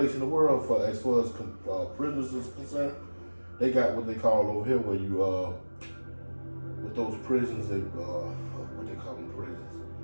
in the world for as far as prisoners is concerned. They got what they call over here where you with those prisons, they what they call them prisons.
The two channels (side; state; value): both; inverted; correlation -1.00